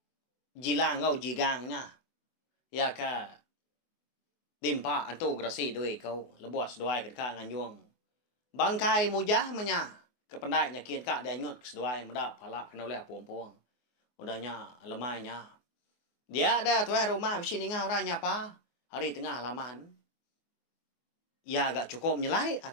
jilang kau jigangnya. Ya ke dimpa antu grasi doi kau lebuas doai kedeka nganjuang bangkai mujah menya kependai nyakin kak dia nyut keseduai muda pala kena oleh puang-puang udahnya lemainya dia ada tuai rumah mesti ninga orang nyapa hari tengah halaman ya agak cukup nyelai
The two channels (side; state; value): right; late; 24 ms